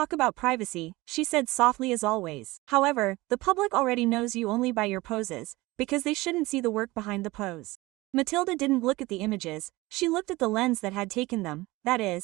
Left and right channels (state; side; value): quieter; left; 20.6 dB